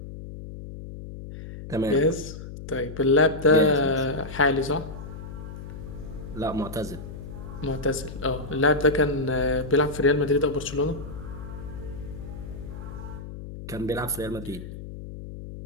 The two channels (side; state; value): left; noise; hum, 11 dB below the sound